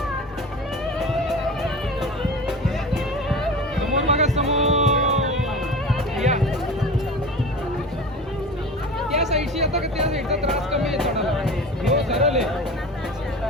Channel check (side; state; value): both; normal; correlation 0.34